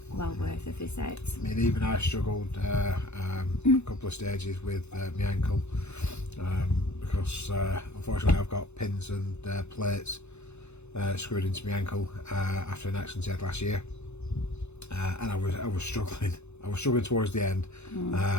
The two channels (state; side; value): late; right; 0.81 ms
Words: a visit. I mean, even I struggled a couple of stages with my ankle, because unfortunately I've got pins and plates screwed into my ankle after an accident I had last year, and I was struggling. I was struggling towards the end,